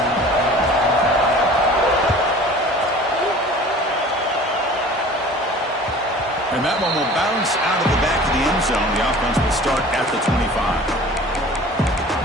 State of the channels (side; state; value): both; normal; correlation 0.44